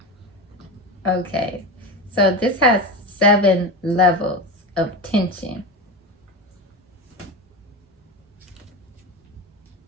Okay, so this has 7 levels of tension.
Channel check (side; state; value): both; normal; correlation 0.22